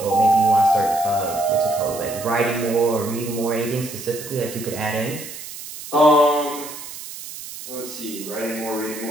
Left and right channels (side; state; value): right; noise; hiss, 12 dB below the sound